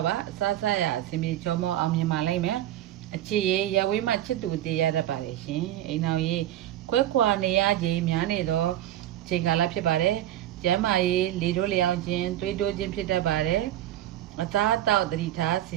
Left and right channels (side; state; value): left; quieter; 12.8 dB